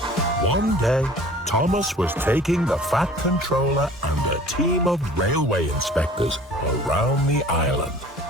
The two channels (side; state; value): both; normal; correlation 0.47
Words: One day, Thomas was taking the Fat Controller and a team of railway inspectors around the island.